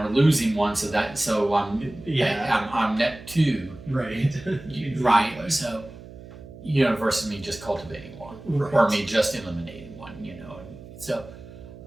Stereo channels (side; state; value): right; noise; hum, 17 dB below the sound